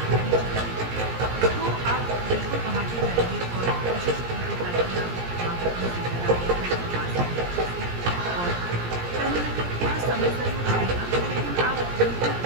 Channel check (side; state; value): left; late; 17 ms